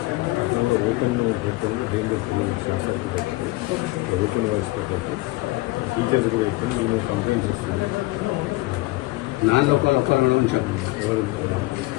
Open danger పిల్లలు open voice teachers కూడా ఇప్పుడు complaints వస్తుంది. నాలుగు ఒకరు ఉంచాము ఎవరు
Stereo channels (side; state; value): right; quieter; 20.7 dB